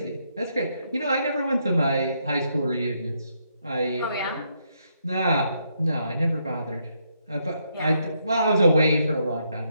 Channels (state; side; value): inverted; both; correlation -0.77